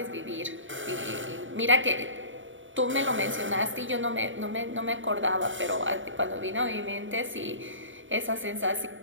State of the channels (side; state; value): left; late; 0.56 ms